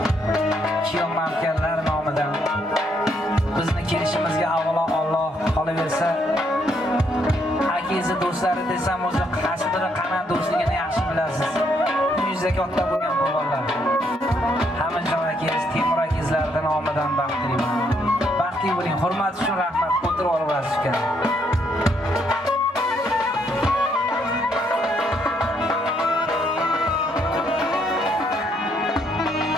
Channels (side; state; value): both; normal; correlation 0.72